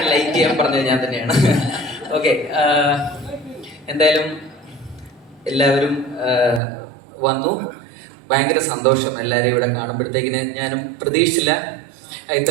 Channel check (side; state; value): left; drops out; at 6.6 s